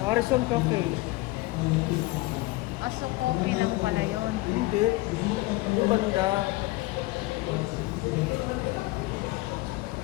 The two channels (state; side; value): quieter; right; 20.4 dB